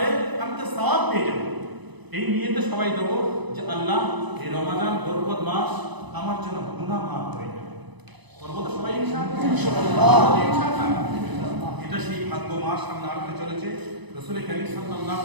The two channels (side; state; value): left; late; 1.0 ms